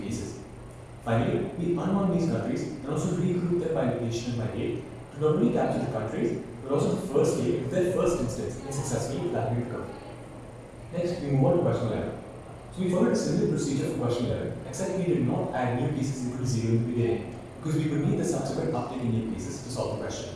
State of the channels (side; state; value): both; identical; correlation 1.00